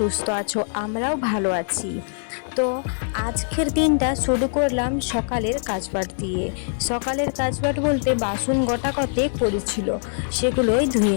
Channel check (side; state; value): right; silent; digital silence